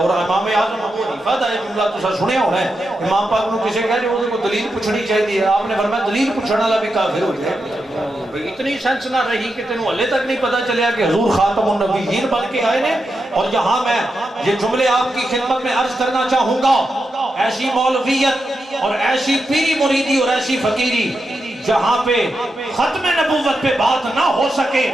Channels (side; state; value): both; normal; correlation 0.87